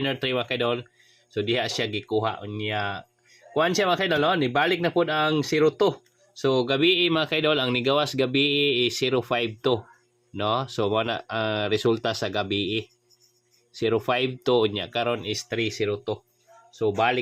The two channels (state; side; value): identical; both; correlation 1.00